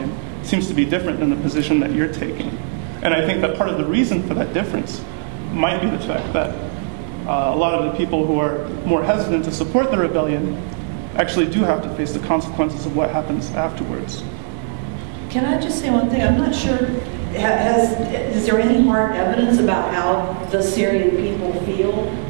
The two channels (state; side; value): silent; left; 64 dB below the other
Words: seems to be different than the position that you're taking. And I think that part of the reason for that difference might be the fact that a lot of the people who are more hesitant to support the rebellion actually do have to face the consequences of what happens afterwards. Can I just say one thing? I'm not sure, is there any hard evidence about how the Syrian people feel?